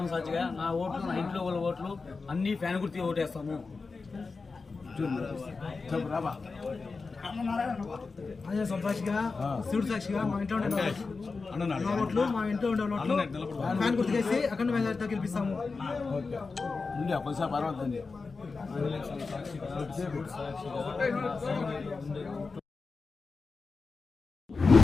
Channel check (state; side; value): quieter; right; 4.3 dB